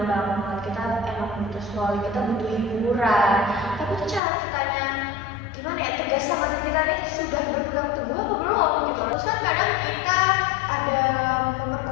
banget, kita emang butuh scrolling, kita butuh hiburan, tapi tuh cara kitanya gimana ya, tegas sama diri kita nih sudah berpegang teguh apa belum gitu. Terus kan kadang kita ada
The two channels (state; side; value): drops out; right; at 4.2 s